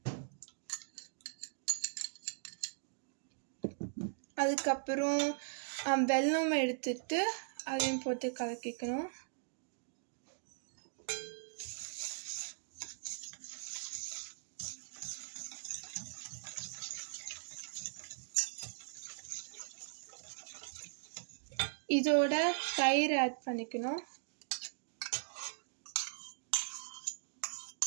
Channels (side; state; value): left; silent; digital silence